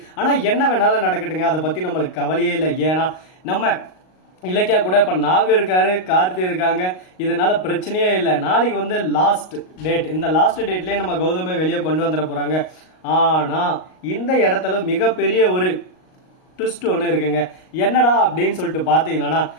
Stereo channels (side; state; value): right; late; 38 ms